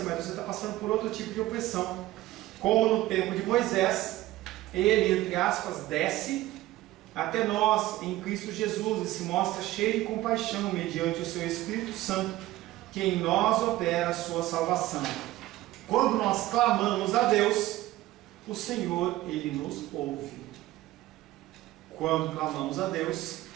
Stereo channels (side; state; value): left; quieter; 16.4 dB